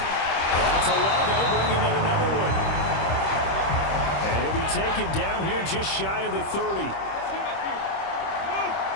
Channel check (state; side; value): late; right; 25 ms